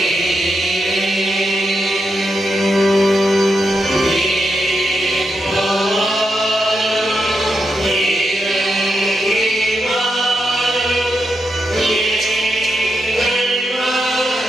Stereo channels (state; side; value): normal; both; correlation 0.85